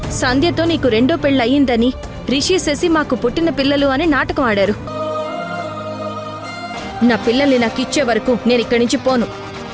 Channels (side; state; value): both; identical; correlation 1.00